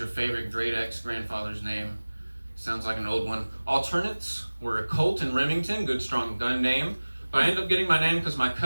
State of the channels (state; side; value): inverted; both; correlation -1.00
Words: favorite great ex-grandfather's name. Sounds like an old one. Alternates were a Colt and Remington, good strong gun name. But I ended up getting my name because my